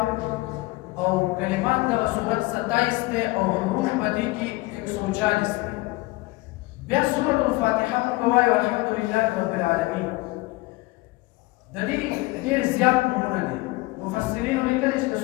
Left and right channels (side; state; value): right; quieter; 21.7 dB